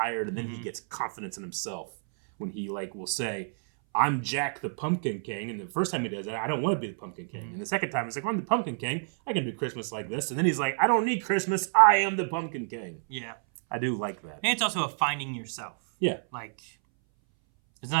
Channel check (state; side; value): silent; left; 59 dB below the other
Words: and then he gets confidence in himself when he will say, "I'm Jack the Pumpkin King," and the first time he does that, I don't want to be the Pumpkin King, and the second time he's like, "I'm the Pumpkin King. I can do Christmas like this," and then he's like, "I don't need Christmas. I am the Pumpkin King." Yeah, I do like that. And it's also a finding yourself. Yeah, like it's